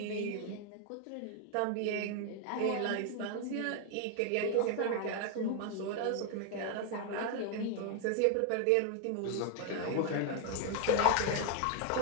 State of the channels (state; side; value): different; both; correlation 0.00